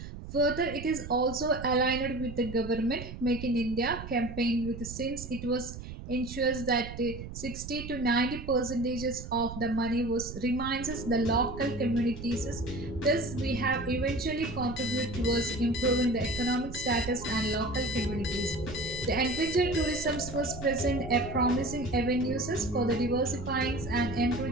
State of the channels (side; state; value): right; noise; rumble, 10 dB below the sound